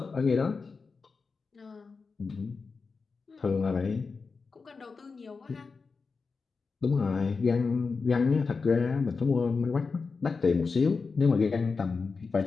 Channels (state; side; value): quieter; right; 4.7 dB